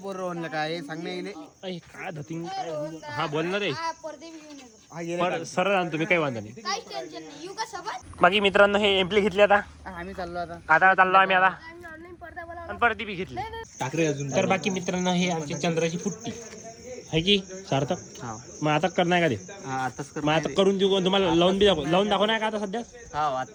म्हणलं काय सांग नाही येईल काय धतिंग हा बोल ना रे पडदे बी घेऊन येतो पर सरळ आणतो मी काही वांधा नाही काहीच टेन्शन नाही येऊ का सोबत बाकी मित्रांनो हे एम्प्ली घेतली आता आम्ही चाललो आता आता चाललो आम्ही आता आणि ऑनलाईन पडदा बोला आणि परत ती बी घेतली टाकरे अजून तर बाकी मित्रांनो हे आमची चंद्राची फुट्टी आहे की सार्थक हा मग आता करणार का ते आताच कर मग आता करून देऊ तुम्हाला लावून दाखवणार का आता सध्या हा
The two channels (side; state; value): both; identical; correlation 1.00